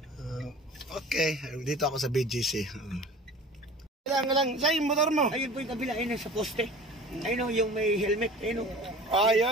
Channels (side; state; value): both; normal; correlation 0.41